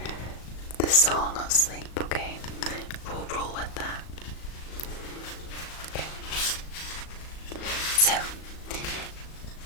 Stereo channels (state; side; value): late; right; 37 ms